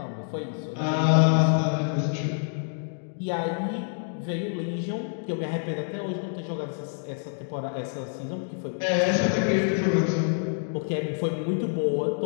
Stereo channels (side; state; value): right; silent; digital silence